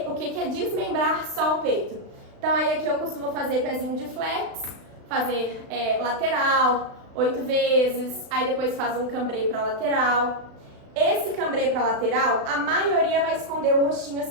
o que é desmembrar só o peito. Então aí aqui eu costumo fazer pezinho de flex, fazer lateral, 8 vezes, aí depois faz um cambrê para lateral. Esse cambrê para lateral, a maioria vai esconder o rostinho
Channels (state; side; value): late; left; 36 ms